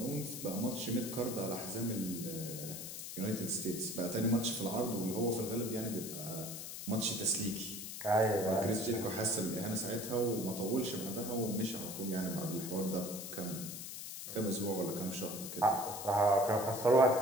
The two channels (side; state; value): left; noise; hiss, 8 dB below the sound